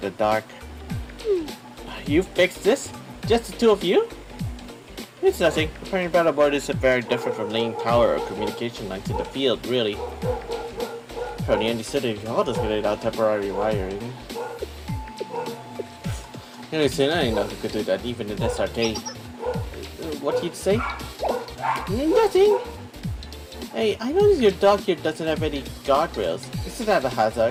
the dark. You fixed this? Just the two of you? It's nothing. Repairing panel board isn't very different from laying power or communication lines in the field, really. From the Andy City, all just laid out temporary wiring. Anyways, I know who could do that, even in this arcade. What did you say? Nothing! Hey, I noticed your dock here doesn't have any guardrails. Isn't that a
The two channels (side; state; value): both; identical; correlation 1.00